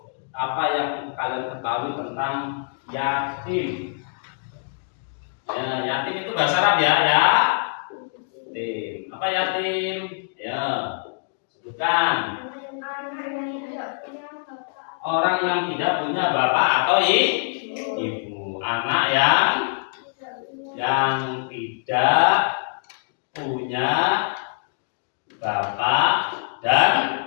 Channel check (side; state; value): right; silent; digital silence